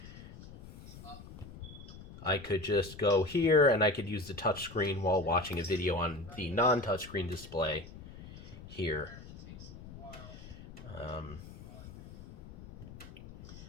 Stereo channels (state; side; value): noise; left; rumble, 16 dB below the sound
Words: I could just go here and I could use the touchscreen while watching a video on the non-touchscreen display here. I